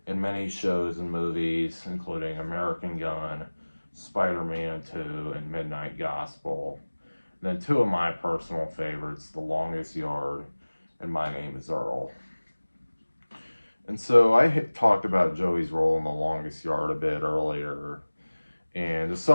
in many shows and movies, including American Gun, Spider-Man 2, and Midnight Gospel. And then two of my personal favorites, The Longest Yard and My Name is Earl. And so I had talked about Joey's role in The Longest Yard a bit earlier. And to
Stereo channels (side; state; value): both; inverted; correlation -1.00